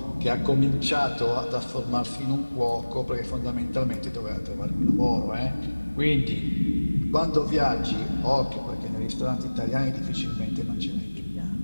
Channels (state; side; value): inverted; both; correlation -1.00